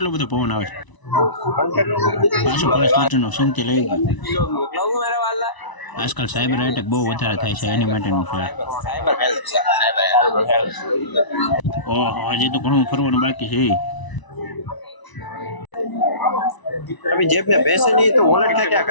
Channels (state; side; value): late; right; 1.0 ms